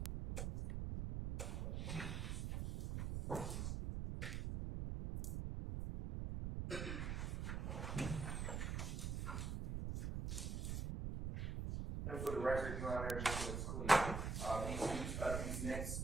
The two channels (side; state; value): right; noise; rumble, 2 dB below the sound